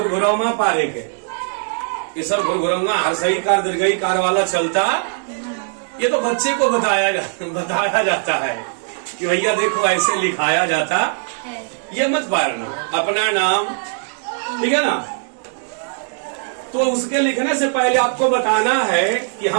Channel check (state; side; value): silent; left; digital silence